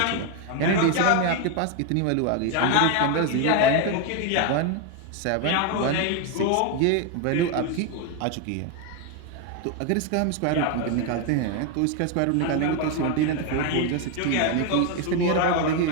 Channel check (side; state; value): both; different; correlation 0.01